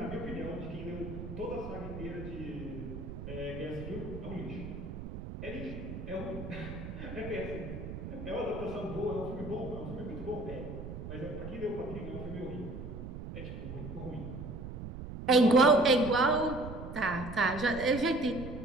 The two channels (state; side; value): noise; right; rumble, 8 dB below the sound